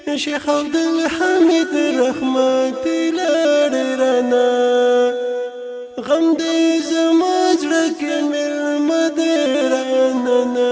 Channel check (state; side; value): identical; both; correlation 1.00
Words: شیخ عبدالحمید رحمتي لاړې رانه غم دې زما زړه کې مېلمه دی رانه نه